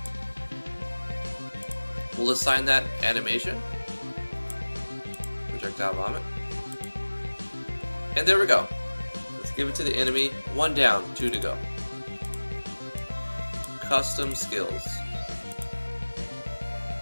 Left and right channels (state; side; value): inverted; both; correlation -1.00